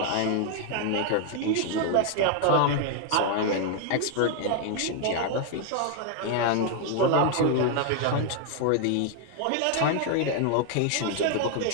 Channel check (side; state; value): both; different; correlation 0.00